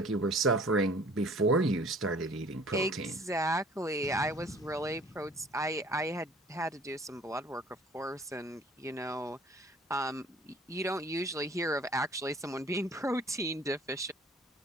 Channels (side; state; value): both; normal; correlation 0.51